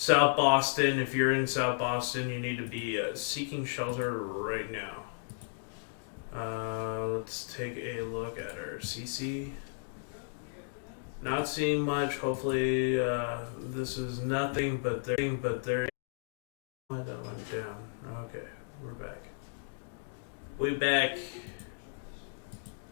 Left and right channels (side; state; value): right; silent; digital silence